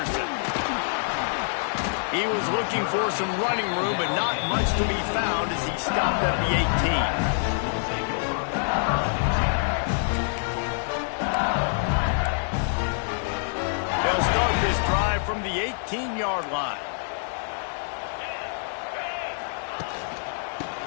He was looking for some running room, but not much to be found as he stopped at the 18. From the 18-yard line.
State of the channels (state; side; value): silent; right; digital silence